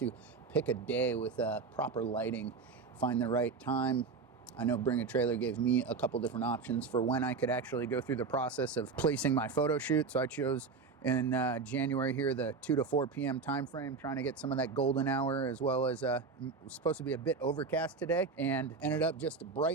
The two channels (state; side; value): quieter; left; 4.8 dB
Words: pick a day with proper lighting. Find the right time. I know Bring a Trailer gave me a couple different options for when I could actually go through the process of placing my photo shoot. So I chose in January here, the 2 to 4 p.m. time frame, trying to get some of that golden hour, as well as it was supposed to be a bit overcast today, and ended up just